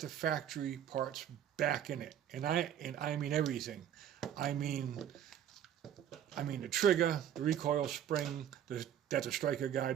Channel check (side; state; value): left; quieter; 10.0 dB